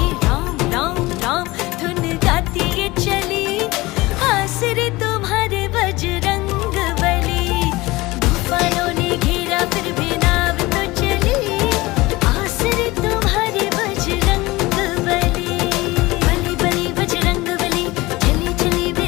राम राम राम धुन गाती ये चली, आसरे तुम्हारे बजरंग बली। तूफानों ने घेरा फिर भी नाव तो चली, आसरे तुम्हारे बजरंग बली। बली बली बजरंग बली, चली चली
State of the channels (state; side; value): quieter; right; 20.8 dB